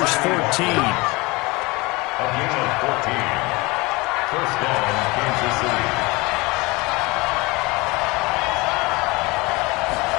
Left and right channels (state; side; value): quieter; right; 24.1 dB